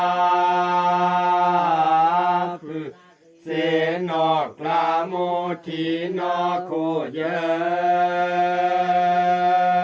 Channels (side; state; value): both; identical; correlation 1.00